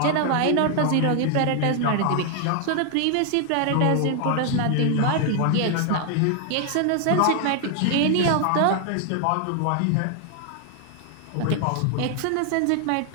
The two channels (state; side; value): different; both; correlation 0.00